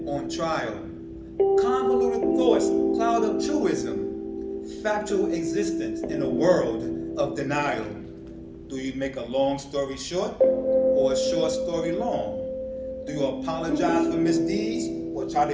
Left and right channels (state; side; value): identical; both; correlation 1.00